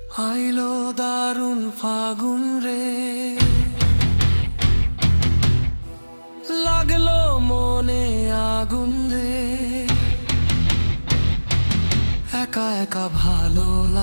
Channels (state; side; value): inverted; both; correlation -1.00